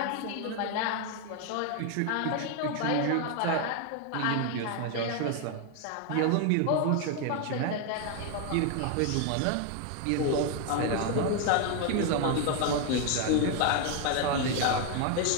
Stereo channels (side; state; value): both; different; correlation 0.01